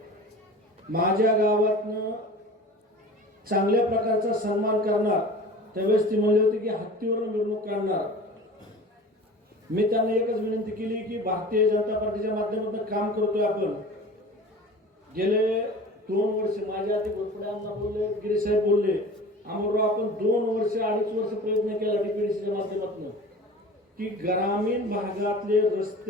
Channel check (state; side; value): normal; both; correlation 0.39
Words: माझ्या गावातनं चांगल्या प्रकारचा सन्मान करणार। त्यावेळेस ती म्हणली होती की हत्तीवरून मिरवणूक काढणार। मी त्यांना एकच विनंती केली की भारतीय जनता पार्टीच्या माध्यमातून काम करतोय आपण। गेले 2 वर्ष माझ्या आधी घोरपड्यांना बोलले, गिरी साहेब बोलले, अमरराव आपण 2 वर्ष 2.5 वर्ष प्रयत्न केला डीपीडीसीच्या माध्यमातून की ग्रामीण भागातले